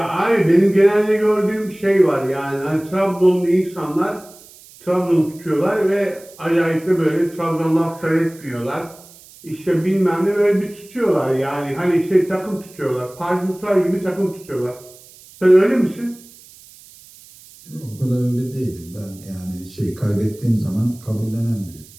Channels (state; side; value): noise; right; hiss, 23 dB below the sound